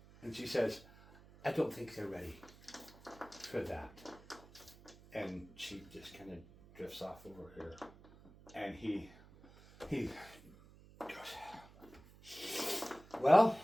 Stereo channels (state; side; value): noise; right; hum, 22 dB below the sound